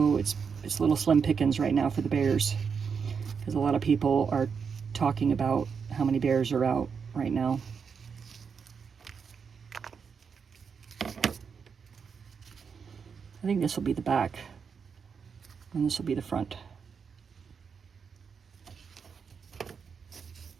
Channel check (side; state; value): left; quieter; 6.1 dB